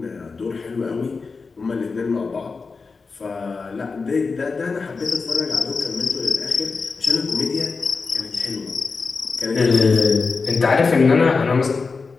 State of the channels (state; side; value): quieter; right; 4.5 dB